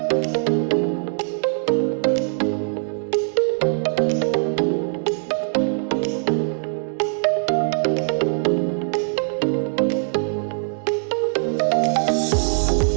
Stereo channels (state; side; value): silent; left; digital silence